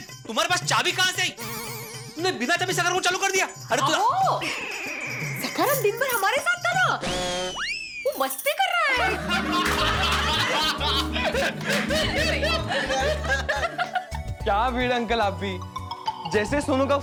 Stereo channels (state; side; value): identical; both; correlation 1.00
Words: तुम्हारे पास चाबी कहाँ से आई? तुमने बिना चाबी सखाराम को चालू कर दिया? अरे तू सखाराम दिन भर हमारे साथ था ना, वो मस्ती कर रहा है। क्या भिड़े अंकल आप भी, जैसे सोनू का